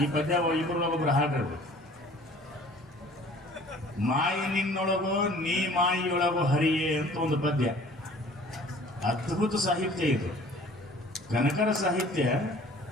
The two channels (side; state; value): both; normal; correlation 0.50